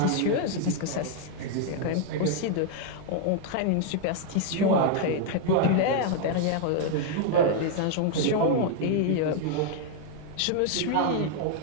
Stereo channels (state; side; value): different; both; correlation 0.00